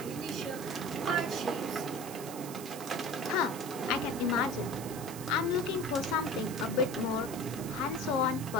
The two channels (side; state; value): right; noise; hiss, 12 dB below the sound